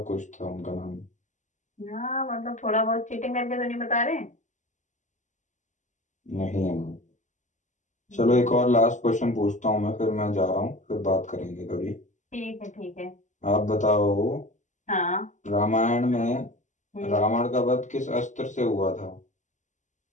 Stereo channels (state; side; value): late; right; 0.35 ms